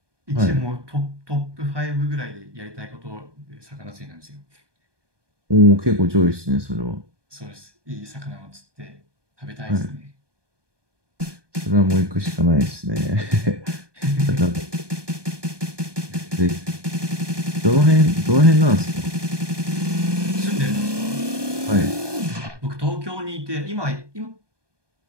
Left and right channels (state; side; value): late; left; 1.2 ms